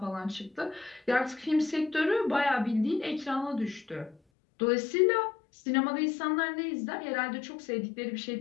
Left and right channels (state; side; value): drops out; right; at 4.2 s